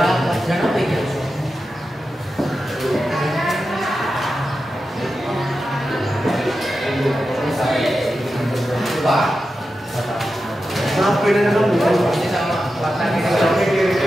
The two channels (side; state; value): both; normal; correlation 0.91